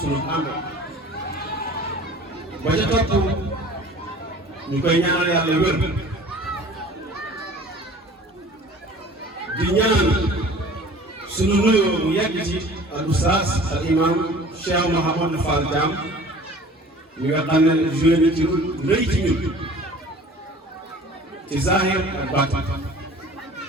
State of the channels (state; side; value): normal; both; correlation 0.46